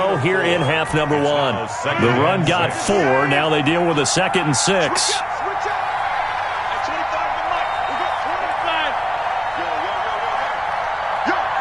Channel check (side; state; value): both; identical; correlation 1.00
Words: here in half number 1. The run got 4. Now they deal with a 2nd and 6.